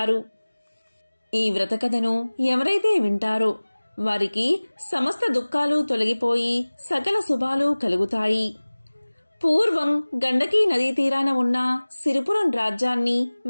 ఈ వ్రతకథను ఎవరైతే వింటారో వారికి సమస్త దుఃఖాలు తొలగిపోయి సకల శుభాలు కలుగుతాయి. పూర్వం గండకీ నదీ తీరాన ఉన్న సిరిపురం రాజ్యాన్ని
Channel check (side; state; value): both; inverted; correlation -1.00